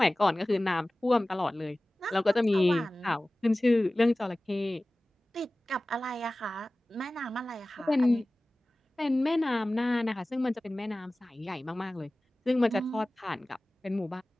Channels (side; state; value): both; normal; correlation 0.97